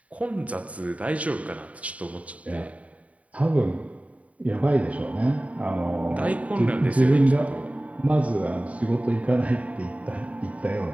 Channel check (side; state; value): left; late; 0.067 ms